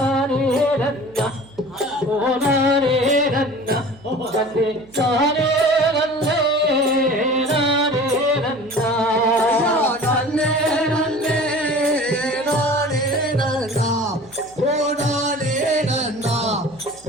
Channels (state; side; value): noise; right; hum, 26 dB below the sound